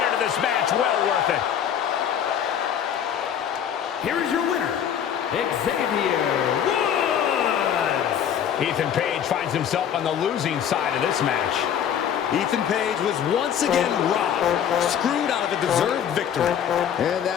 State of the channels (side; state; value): right; quieter; 9.0 dB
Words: into this match. Well worth it. Here is your winner, Xavier Woods. Ethan Page finds himself on the losing side of this match. Ethan Page was once again robbed, screwed out of a deserved victory. And